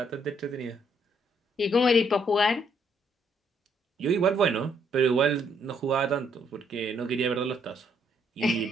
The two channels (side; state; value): both; normal; correlation 0.70